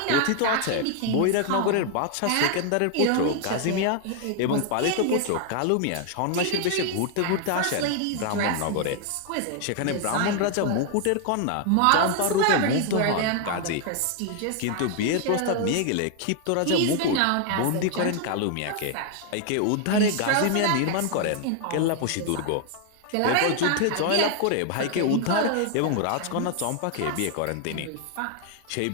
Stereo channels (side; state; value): both; different; correlation 0.00